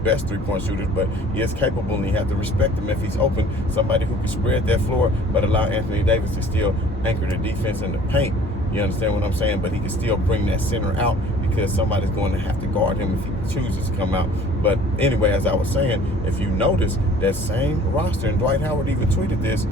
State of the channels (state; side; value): normal; both; correlation 0.51